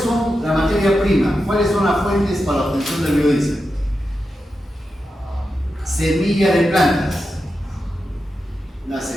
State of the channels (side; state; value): both; normal; correlation 0.89